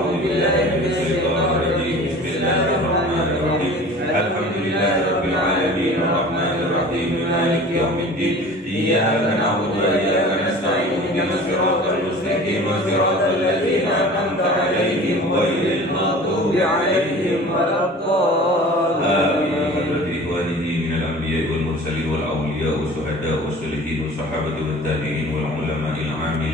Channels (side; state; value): both; normal; correlation 0.42